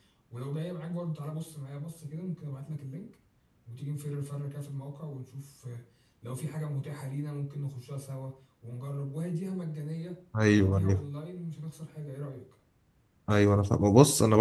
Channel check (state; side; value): identical; both; correlation 1.00